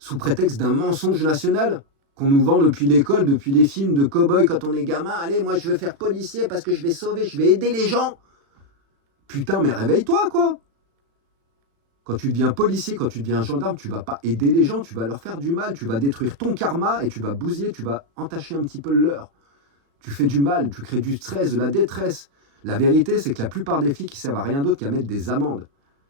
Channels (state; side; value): late; left; 36 ms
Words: prétexte d'un mensonge national qu'on nous vend depuis l'école, depuis les films de cow-boys quand on est gamin. Allez, moi je veux faire policier parce que je vais sauver, je vais aider les gens. Putain, mais réveille-toi, quoi. Quand tu deviens policier, quand tu deviens gendarme, tu vas pas aider les gens, tu vas leur faire du mal, tu vas détruire ton karma et tu vas bousiller, tu vas entacher un petit peu le leur. Tu fais du mal, tu crées du stress, de la détresse. La vérité, c'est que la plupart des flics, ils servent à rien d'autre qu'à mettre des amendes.